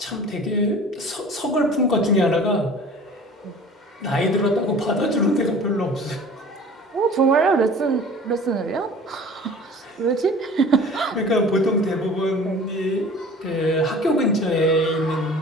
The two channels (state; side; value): normal; both; correlation 0.44